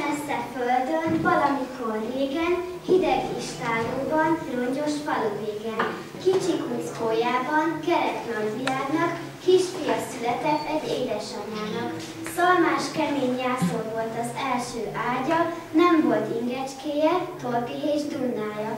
földön, valamikor régen, hideg istálóban, rongyos falu végen, kicsi kuckójában, kerek nagyvilágnak, kisfia született egy édesanyának. Szalmás kemény jászol volt az első ágya, nem volt ingecskéje, torki és dunnája.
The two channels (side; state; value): both; identical; correlation 1.00